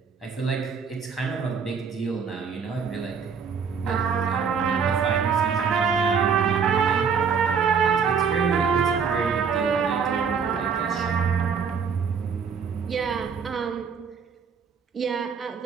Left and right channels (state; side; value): quieter; left; 6.2 dB